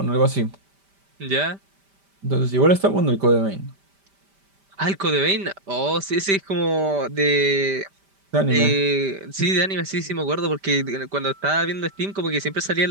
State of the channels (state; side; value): late; left; 5.1 ms